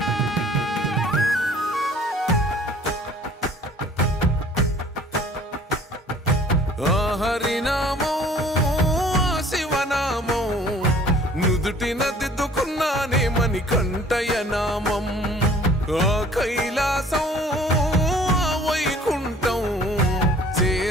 హరినామం శివనామం నుదుటిన దిద్దుకున్నానే మణికంఠయ నామం కైలాసం వైకుంఠం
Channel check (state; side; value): normal; both; correlation 0.52